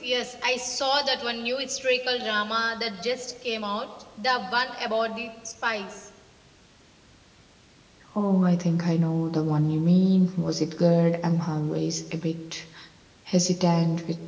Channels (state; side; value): identical; both; correlation 1.00